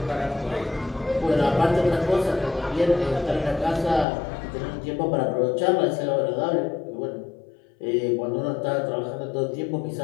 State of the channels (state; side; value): drops out; right; at 4.0 s